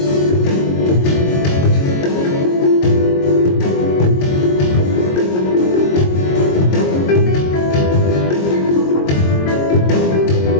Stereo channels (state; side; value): late; right; 22 ms